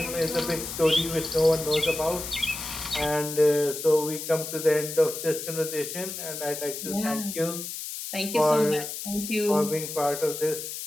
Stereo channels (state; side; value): noise; left; hiss, 7 dB below the sound